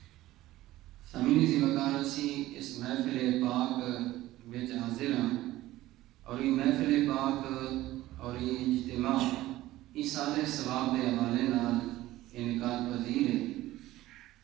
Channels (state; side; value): quieter; left; 16.1 dB